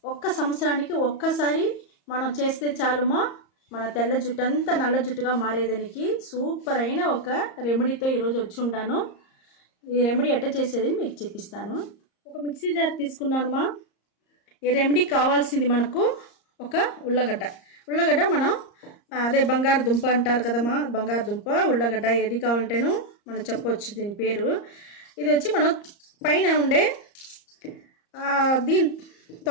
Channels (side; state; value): right; late; 34 ms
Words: ఒక్క సంవత్సరానికి ఒక్కసారి మనం చేస్తే చాలుమా, మన తెల్ల జుట్టు అంతా నల్ల జుట్టుగా మారేదానికి సూపర్ అయిన ఒక రెమెడీతో ఈరోజు వచ్చి ఉంటాను. ఈ రెమెడీ ఎట్ట చేసేది మీకు చెప్పిస్తాను. ఒక మిక్సీ జార్ తీసుకున్నానుమా. ఈ రెమెడీ కావాల్సింది మనకు ఒక ఉల్లగడ్డ మనం అదే బంగారుదుంప అంటారు కదమ్మా, బంగారుదుంప ఉల్లగడ్డ ఏది కావాలంటేనో మనం చెప్పవచ్చు దీని పేరు. ఇది వచ్చి మనం పైన ఉండే దీని